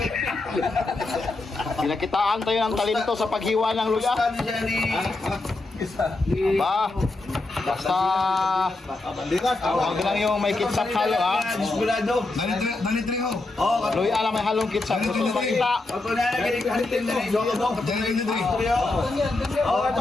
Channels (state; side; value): quieter; right; 3.1 dB